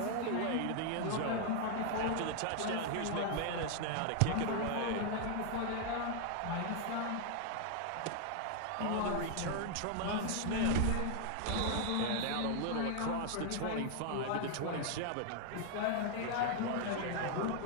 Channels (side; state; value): both; different; correlation 0.00